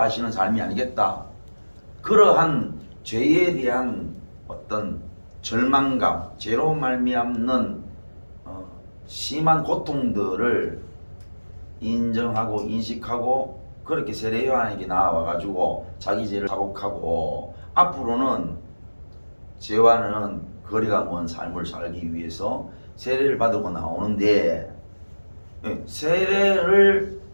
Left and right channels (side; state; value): both; inverted; correlation -1.00